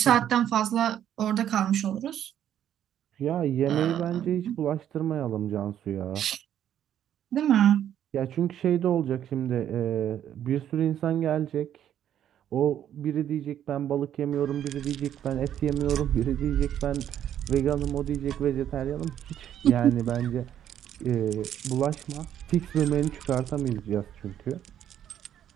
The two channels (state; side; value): quieter; left; 10.4 dB